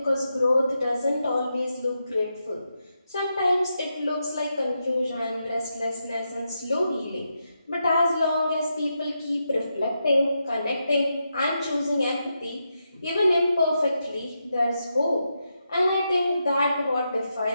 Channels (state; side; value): inverted; both; correlation -0.85